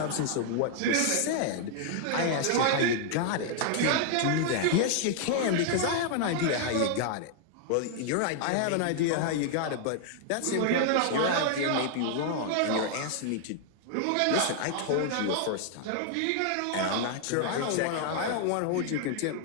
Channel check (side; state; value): both; different; correlation 0.00